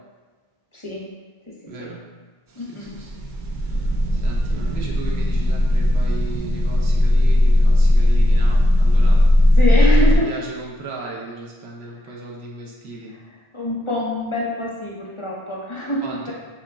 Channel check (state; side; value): late; right; 1.4 ms